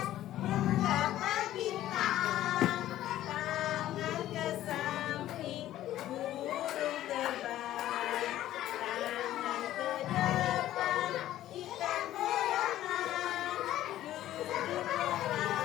menggapai bintang, tangan ke samping burung terbang, tangan ke depan ikan berenang, duduk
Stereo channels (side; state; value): right; quieter; 13.5 dB